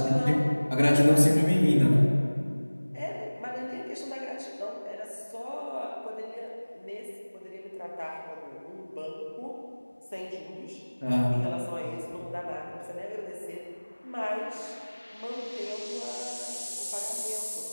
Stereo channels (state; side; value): inverted; both; correlation -1.00